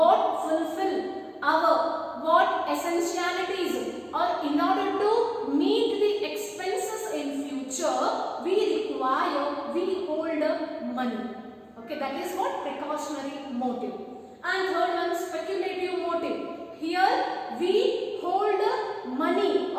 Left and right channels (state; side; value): identical; both; correlation 1.00